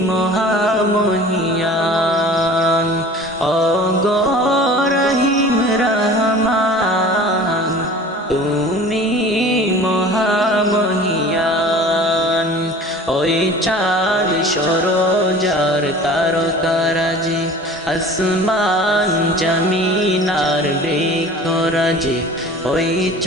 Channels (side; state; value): both; normal; correlation 0.43